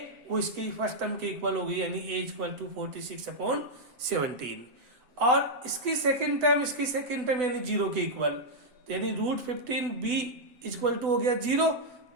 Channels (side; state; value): left; late; 8.0 ms